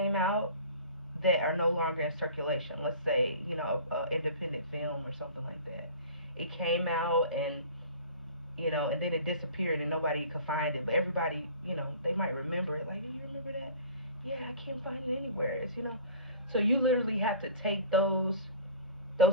out that are no longer in circulation. Let's say, independent film or something like that. It came out and then it disappeared and nobody could find it. But everybody, they might remember it. Like, do you remember that? Yeah, I can't find it anywhere. So you literally have to take those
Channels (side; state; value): both; inverted; correlation -0.42